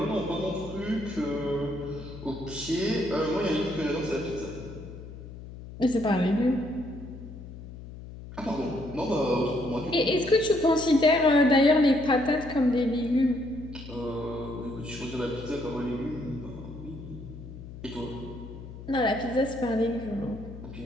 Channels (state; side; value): noise; left; hum, 13 dB below the sound